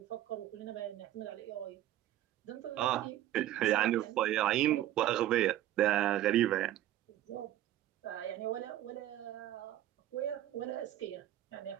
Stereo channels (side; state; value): left; quieter; 13.2 dB